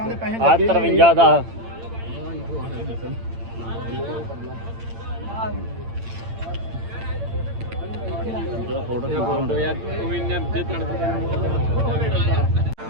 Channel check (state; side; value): late; left; 8.8 ms